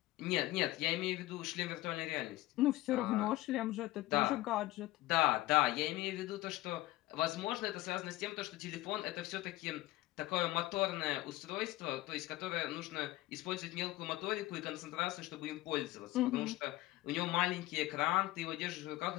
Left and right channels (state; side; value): quieter; right; 17.6 dB